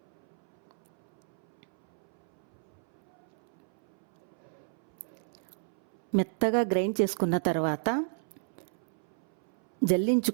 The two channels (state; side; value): silent; left; 57 dB below the other